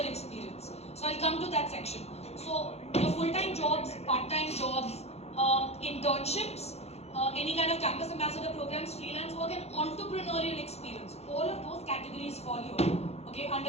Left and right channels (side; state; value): right; late; 0.31 ms